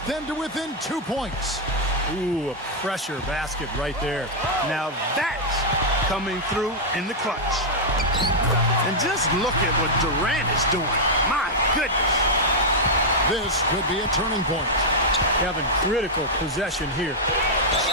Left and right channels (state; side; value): normal; both; correlation -0.04